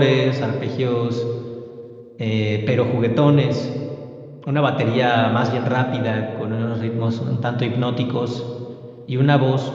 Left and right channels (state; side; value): identical; both; correlation 1.00